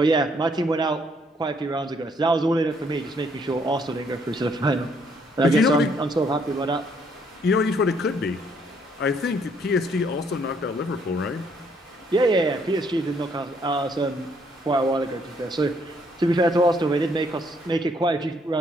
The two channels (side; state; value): both; normal; correlation 0.68